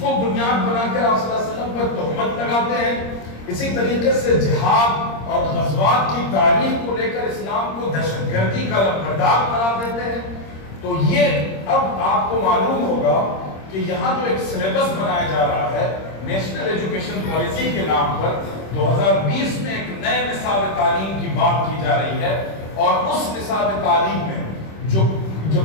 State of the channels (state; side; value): late; right; 26 ms